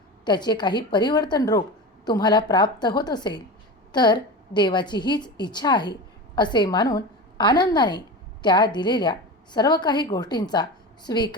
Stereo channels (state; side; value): normal; both; correlation 0.27